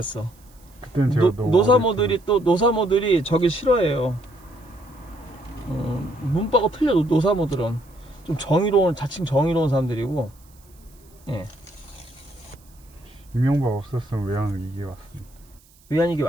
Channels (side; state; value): right; noise; hiss, 29 dB below the sound